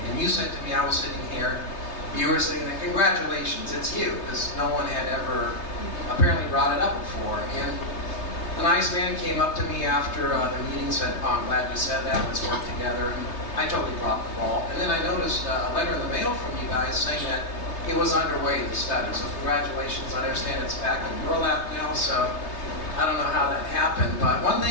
And you said to me, I was sitting here, you were saying, congratulations, it's you, because no one had ever apparently brought it up before. And the nice man came up to me after the meeting and said, oh, I'm glad you said that, let's work together. And I totally dropped the ball. And then I noticed a letter in the mail from you guys saying that it was underway, the study. So congratulations, I understand it's back in burlap now. So I don't know how that happened, but one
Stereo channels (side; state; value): right; late; 3.3 ms